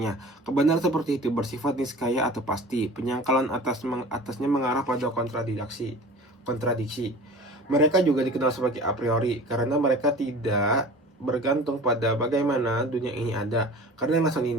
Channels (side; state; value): both; normal; correlation 0.40